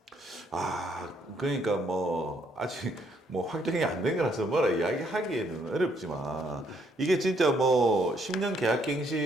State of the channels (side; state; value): both; normal; correlation 0.70